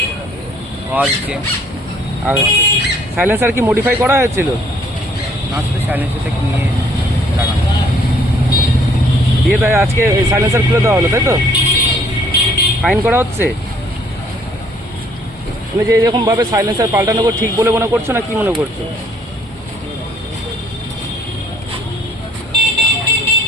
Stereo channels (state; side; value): normal; both; correlation 0.63